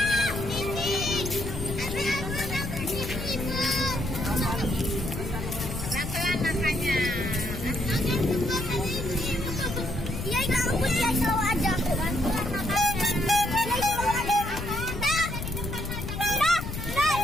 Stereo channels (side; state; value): left; noise; rumble, 6 dB below the sound